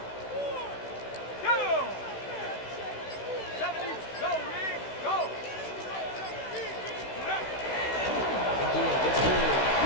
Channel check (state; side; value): late; right; 16 ms